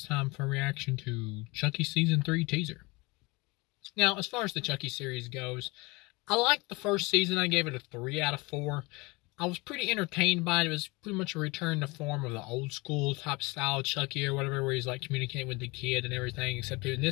time for a reaction to Chucky Season 3 teaser. Now, as far as the Chucky series goes, I liked the first season. I gave it a 3 out of 4. I was pretty entertained by it. It was pretty much a return to form of the old school type style Chucky or whatever, where he's like communicating with the kid and everything, except in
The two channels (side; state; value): right; quieter; 25.2 dB